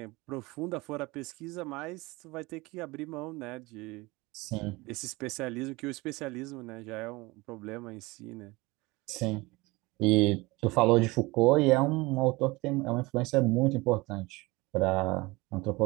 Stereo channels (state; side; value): quieter; left; 22.8 dB